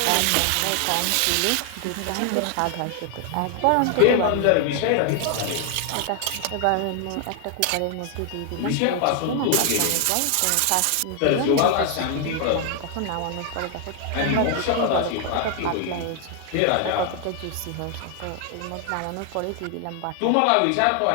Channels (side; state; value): both; different; correlation 0.00